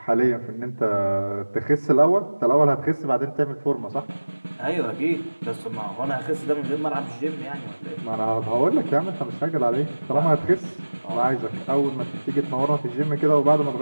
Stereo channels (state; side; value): inverted; both; correlation -1.00